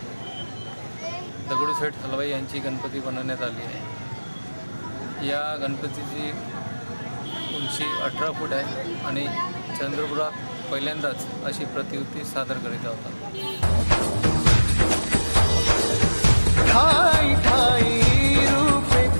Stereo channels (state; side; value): inverted; both; correlation -1.00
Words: दगडूशेठ हलवाई यांची गणपती बनवण्यात आली आहे। या गणपतीची उंची 18 फूट आहे आणि चंद्रपुरात पहिल्यांदाच अशी प्रतिकृती सादर करीत होता। ठाई ठाई रूपे